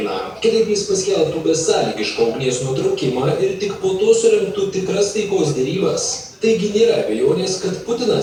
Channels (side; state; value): both; identical; correlation 1.00